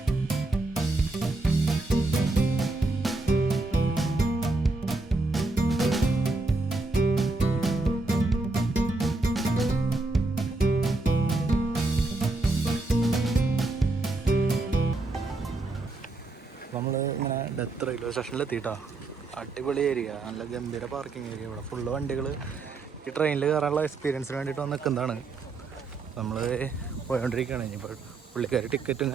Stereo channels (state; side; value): quieter; left; 3.4 dB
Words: നമ്മൾ ഇങ്ങനെ ഡെത്ത് റെയിൽവേ സ്റ്റേഷനിൽ എത്തിയിട്ടാ. അടിപൊളി ഏരിയ, നല്ല ഗംഭീര പാർക്കിംഗ് ഏരിയ. ഇവിടെ ഫുള്ള് വണ്ടികൾ ഈ ട്രെയിനിൽ കയറാനുള്ള എക്സ്പീരിയൻസിന് വേണ്ടിയിട്ട് വന്ന് നിൽക്കുന്നതാണ്. നമ്മൾ പോയോണ്ടിരിക്കുകയാണ്. ഇനിയിപ്പോൾ പുള്ളിക്കാർ ടിക്കറ്റും